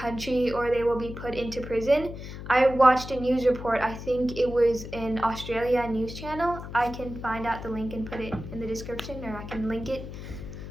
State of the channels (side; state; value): left; noise; hum, 10 dB below the sound